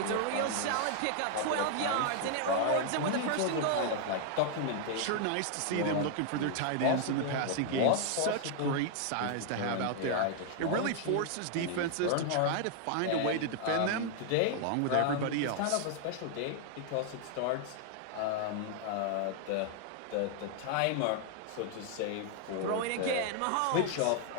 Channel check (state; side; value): different; both; correlation 0.00